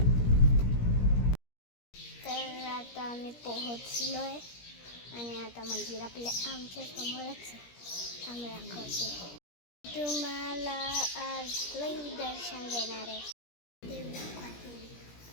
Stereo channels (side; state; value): right; late; 17 ms